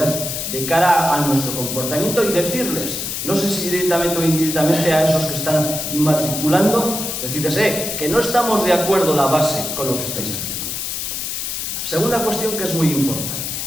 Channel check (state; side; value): noise; left; hiss, 4 dB below the sound